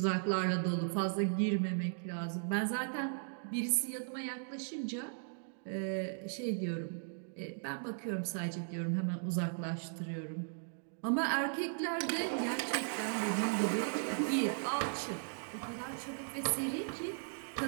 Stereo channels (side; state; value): left; silent; digital silence